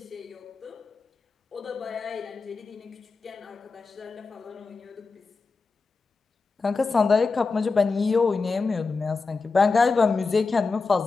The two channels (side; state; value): right; quieter; 4.3 dB